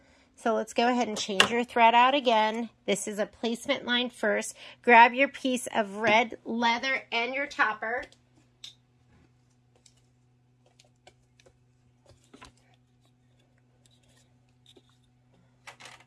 So let's go ahead and change your thread out again. This is a placement line first. Grab your piece of red leather and your topper.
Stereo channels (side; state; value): both; identical; correlation 1.00